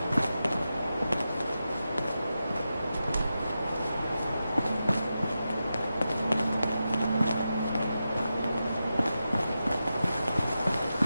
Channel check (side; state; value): both; inverted; correlation -0.90